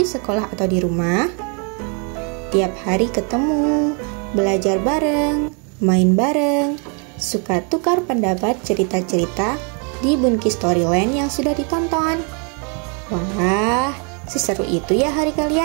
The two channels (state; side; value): quieter; left; 37.1 dB